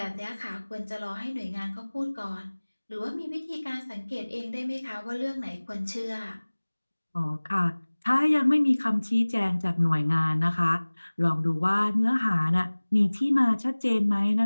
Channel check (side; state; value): both; inverted; correlation -1.00